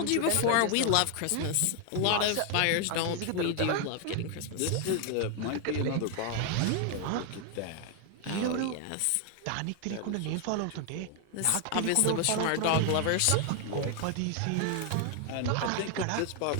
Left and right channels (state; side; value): different; both; correlation 0.00